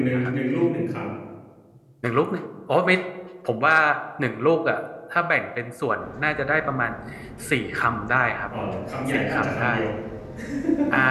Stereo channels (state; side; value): identical; both; correlation 1.00